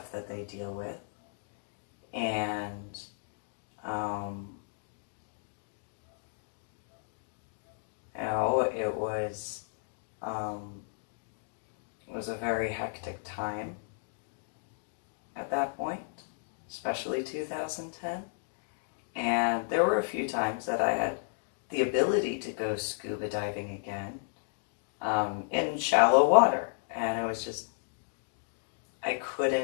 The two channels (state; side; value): silent; right; digital silence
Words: that they deal with. And you know, it was a very hectic time at that point, especially 2010. And there were a few times that I had the ability to go scuba diving again in shallow water. And it was just, I